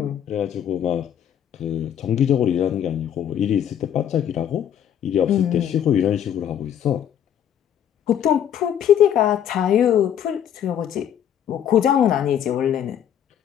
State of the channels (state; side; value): quieter; right; 9.6 dB